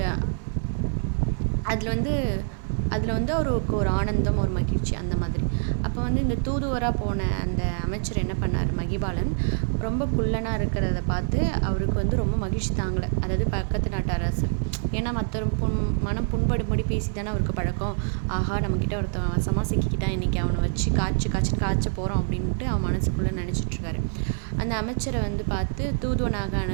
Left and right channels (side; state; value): left; silent; 61 dB below the other